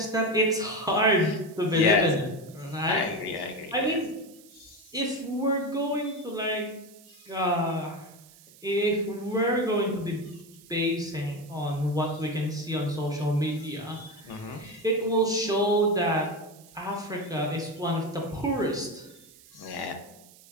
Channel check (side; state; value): right; noise; hiss, 24 dB below the sound